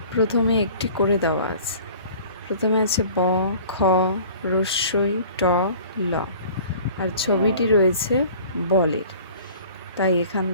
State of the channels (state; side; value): inverted; both; correlation -0.47